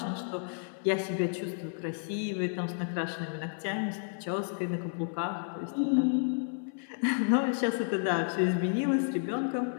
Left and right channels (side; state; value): right; silent; 57 dB below the other